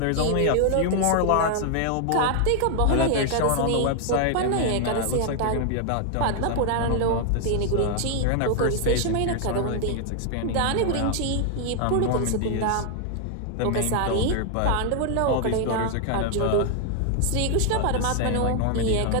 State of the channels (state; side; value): different; both; correlation 0.00